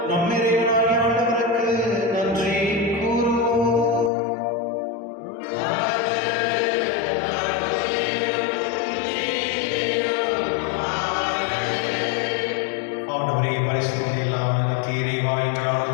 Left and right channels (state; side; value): drops out; right; at 4.1 s